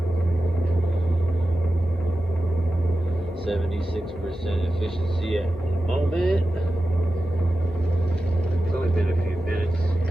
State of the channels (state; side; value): normal; both; correlation 0.93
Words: 76% efficiency at the moment. It's only been a few minutes.